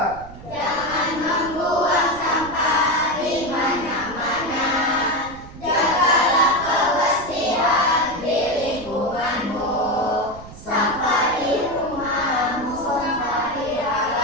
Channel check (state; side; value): noise; right; rumble, 16 dB below the sound